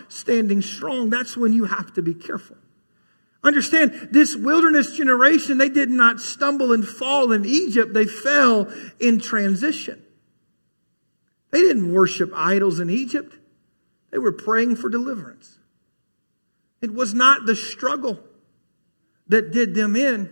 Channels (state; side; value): inverted; both; correlation -1.00